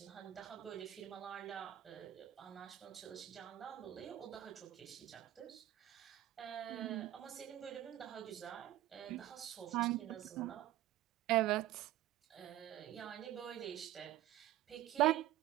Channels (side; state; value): left; quieter; 14.2 dB